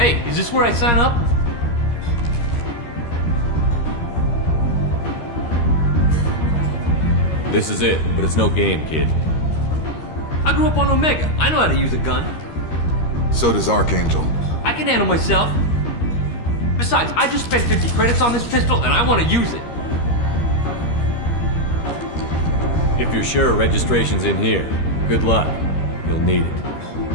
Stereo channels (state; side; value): late; right; 13 ms